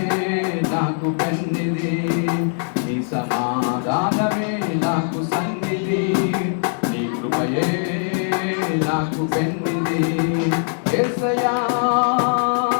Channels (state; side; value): silent; right; 65 dB below the other